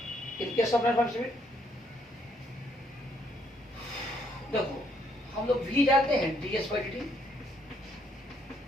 in case of non uniform speed, देखो हम लोग भी जानते हैं ds बाई dt,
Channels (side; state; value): both; normal; correlation 0.70